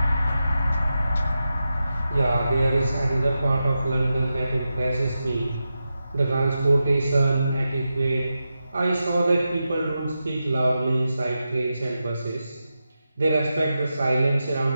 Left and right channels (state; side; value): inverted; both; correlation -0.90